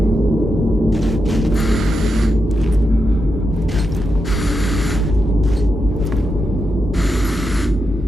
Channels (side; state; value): both; normal; correlation 0.86